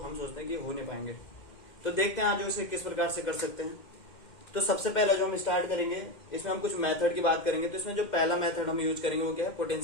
सोचते हैं कि हो नहीं पाएंगे। तो देखते हैं आज उसे किस प्रकार से कर सकते हैं। तो सबसे पहला जो हम स्टार्ट करेंगे, इसमें हम कुछ मेथड की बात करेंगे। तो इसमें जो पहला मेथड हम यूज करेंगे वो क्या है,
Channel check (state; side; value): late; right; 2.1 ms